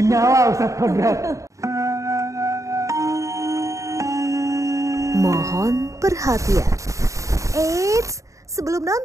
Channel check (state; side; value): late; left; 0.15 ms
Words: Ustadz Kodrat. Mohon perhatian. Eits, sebelum